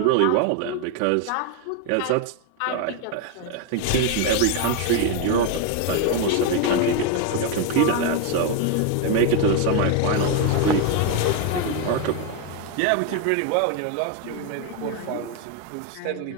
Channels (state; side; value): different; both; correlation 0.01